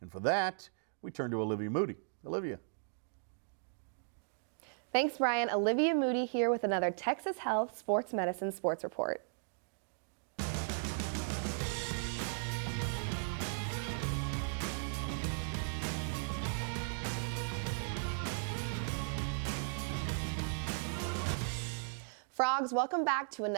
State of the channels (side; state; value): left; silent; digital silence